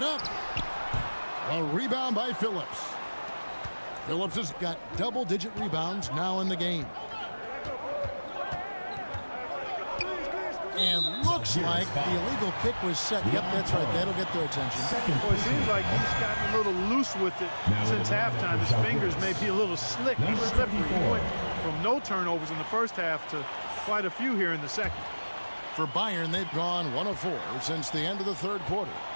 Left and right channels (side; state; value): both; inverted; correlation -1.00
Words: up. A rebound by Phillips. Phillips has got double-digit rebounds now in the game. And looks like the illegal kick was set. Yep, that's right. That'll get their attention. Well, it seems like he's gotten a little loose with it since halftime. His fingers may be a little slick. He's slippery. He went from no turnovers in the first half to quite a few here in the second. For Bayern, they've gone 1 of 4 since the end of the third quarter.